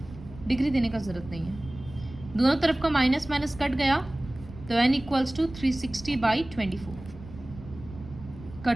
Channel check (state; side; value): noise; right; rumble, 16 dB below the sound